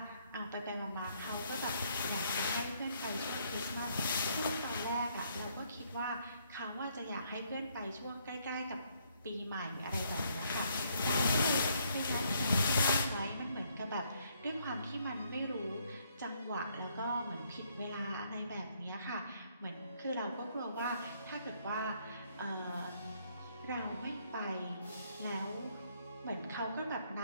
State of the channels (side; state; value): both; inverted; correlation -0.70